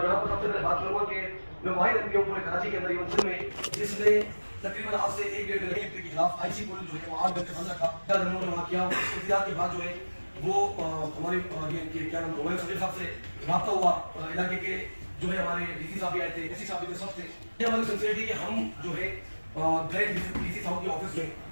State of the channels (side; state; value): both; inverted; correlation -1.00